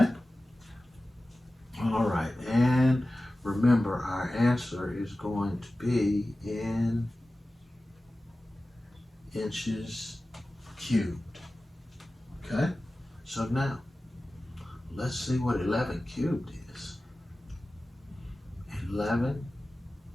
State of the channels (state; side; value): normal; both; correlation 0.96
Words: All right, and remember our answer is going to be in inches cubed. Okay? So now, let's see what 11 cubed is. 11